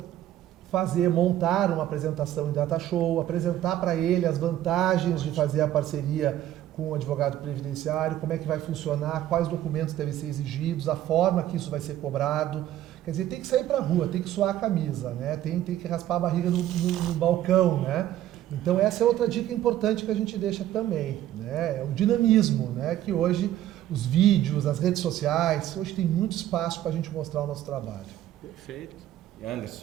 montar uma apresentação em data show, apresentar para ele as vantagens de fazer a parceria com o advogado previdenciário, como é que vai funcionar, quais documentos devem ser exigidos, a forma que isso vai ser cobrado. Quer dizer, tem que sair para a rua, tem que suar a camisa, né? Tem que raspar a barriga no balcão, né? Então essa é outra dica importante que a gente deixa também, né? É o dinamismo, né? Que hoje os vídeos, as redes sociais, hoje tem muito espaço para a gente mostrar o nosso trabalho. Perfeito. E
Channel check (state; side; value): quieter; left; 12.8 dB